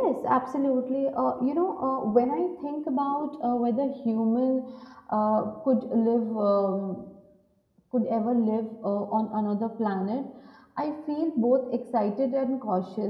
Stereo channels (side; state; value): both; identical; correlation 1.00